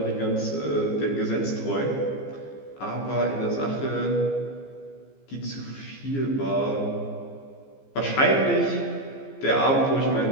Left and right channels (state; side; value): late; right; 15 ms